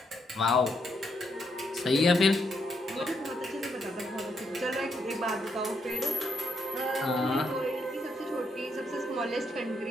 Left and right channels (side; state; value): both; normal; correlation 0.77